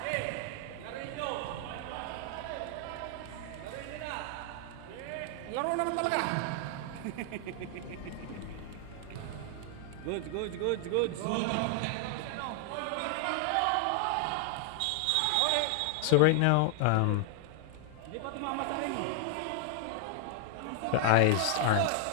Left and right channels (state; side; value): different; both; correlation 0.00